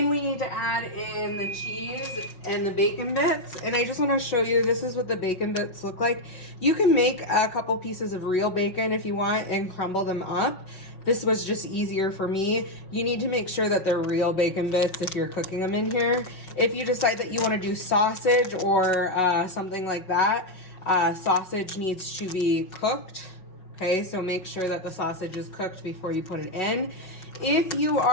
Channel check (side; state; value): right; late; 5.2 ms